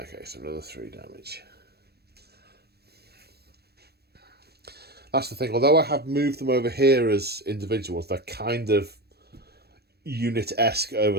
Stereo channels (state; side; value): late; left; 0.47 ms